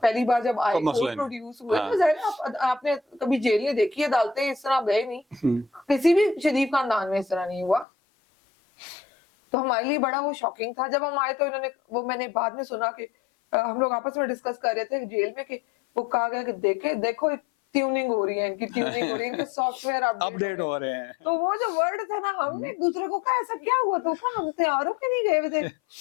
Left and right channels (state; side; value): drops out; right; at 7.9 s